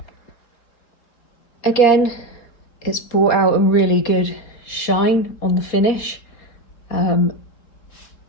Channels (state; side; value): late; right; 4.1 ms